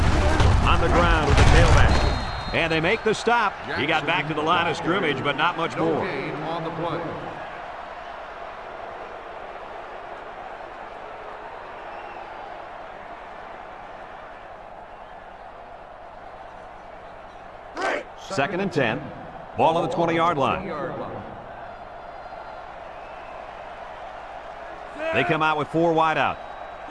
On the ground with the tailback. And they make the stop. He got back to the line of scrimmage, but not much more. On the play. Second and 10. Ball on the 20-yard line. They come out with 4 wide out.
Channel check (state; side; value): identical; both; correlation 1.00